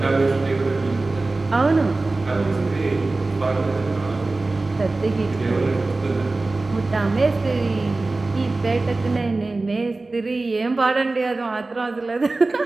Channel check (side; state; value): left; quieter; 3.3 dB